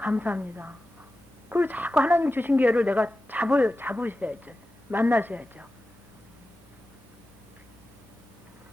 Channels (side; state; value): both; normal; correlation 0.94